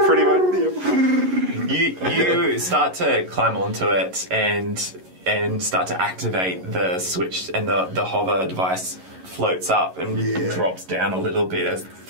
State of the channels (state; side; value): late; left; 11 ms